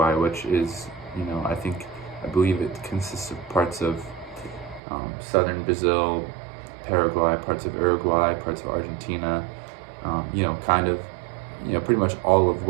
which is, you know, I believe it consists of parts of southern Brazil, Paraguay, parts of Uruguay, parts of Argentina, you know, kind of, you know, pretty much all of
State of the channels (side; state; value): left; drops out; at 4.8 s